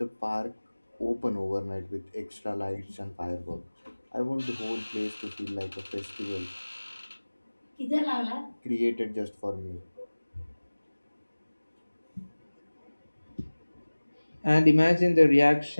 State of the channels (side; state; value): both; inverted; correlation -1.00